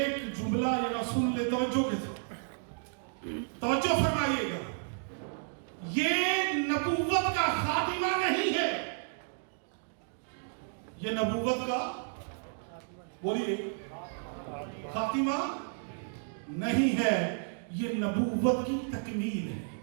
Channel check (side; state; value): left; silent; digital silence